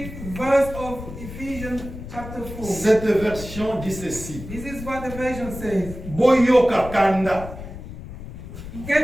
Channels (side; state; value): left; noise; rumble, 11 dB below the sound